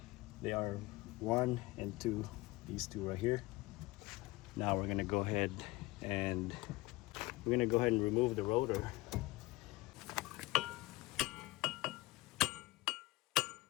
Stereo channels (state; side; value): quieter; right; 20.4 dB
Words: They are 1 and 2, these two right here. Now we're gonna go ahead and remove the rotor.